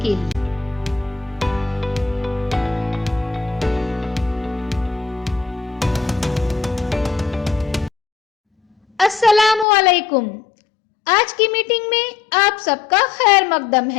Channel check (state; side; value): drops out; right; at 9.7 s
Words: लिए। अस्सलामु अलैकुम। आज की मीटिंग में आप सबका खैर मकदम